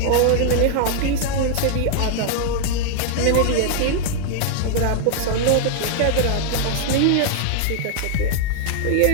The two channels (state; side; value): different; both; correlation 0.00